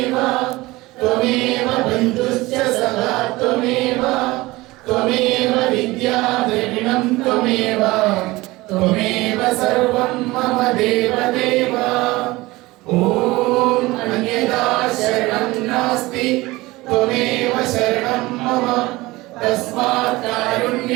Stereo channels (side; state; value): left; quieter; 20.4 dB